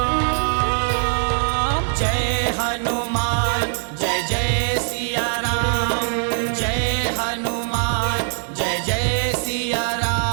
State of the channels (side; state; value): left; silent; 63 dB below the other